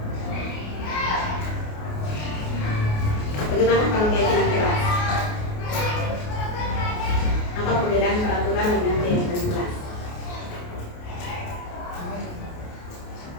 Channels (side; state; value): right; late; 28 ms